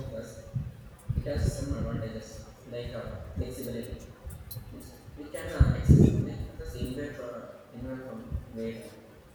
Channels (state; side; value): identical; both; correlation 1.00